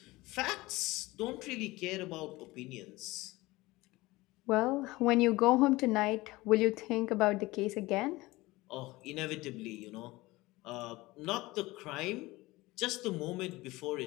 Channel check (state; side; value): quieter; right; 20.3 dB